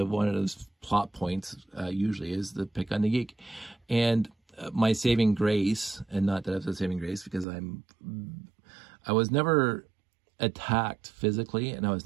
of those plot points usually is the pick on the geek. And my saving grace, and not that I was a saving grace, because I was never attacked physically, and I was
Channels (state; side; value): drops out; left; at 7.5 s